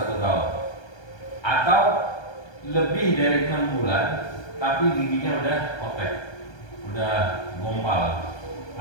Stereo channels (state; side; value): late; right; 1.2 ms